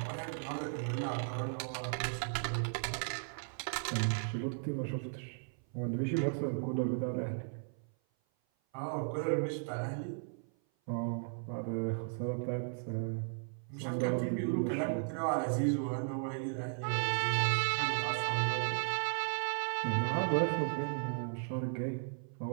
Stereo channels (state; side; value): silent; left; 54 dB below the other